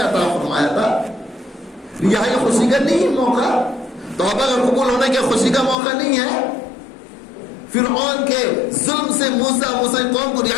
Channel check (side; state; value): right; drops out; at 5.8 s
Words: عطا فرمایا تھا. رہائی خوشی کا نہیں موقع، توبہ کا قبول ہونے کے خوشی کا موقع نہیں ہے. فرعون کے ظلم سے موسیٰ قوم کو